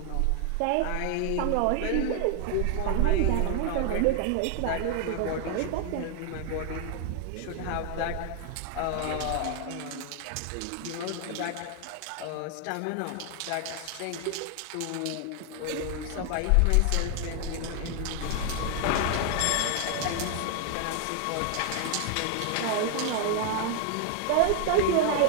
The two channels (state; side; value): different; both; correlation 0.00